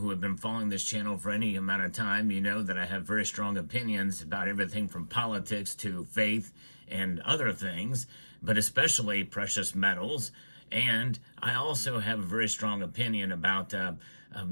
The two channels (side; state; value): both; inverted; correlation -1.00